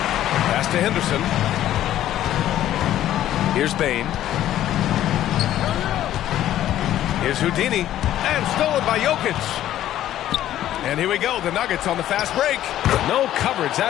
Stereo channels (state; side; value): quieter; right; 12.5 dB